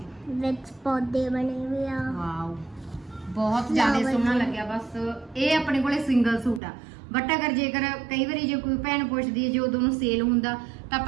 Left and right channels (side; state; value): left; drops out; at 6.6 s